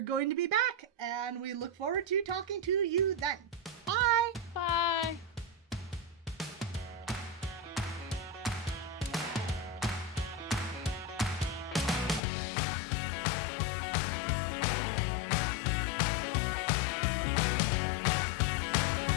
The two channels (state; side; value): drops out; right; at 12.2 s